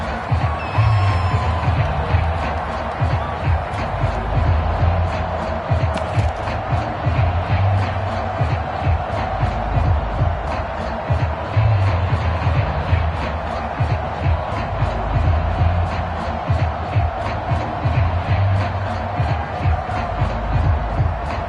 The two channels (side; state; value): both; identical; correlation 1.00